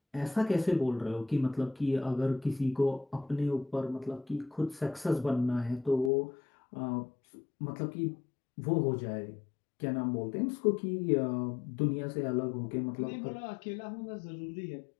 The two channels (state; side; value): drops out; right; at 6.1 s